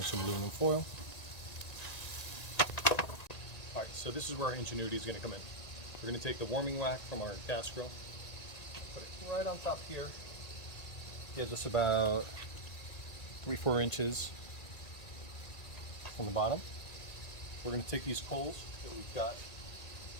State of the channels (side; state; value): right; late; 1.9 ms